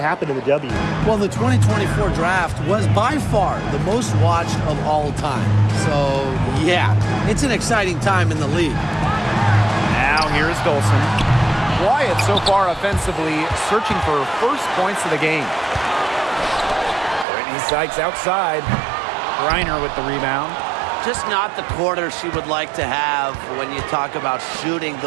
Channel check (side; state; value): left; drops out; at 17.2 s